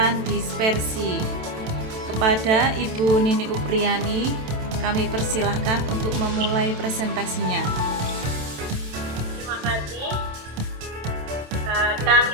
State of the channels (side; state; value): left; late; 27 ms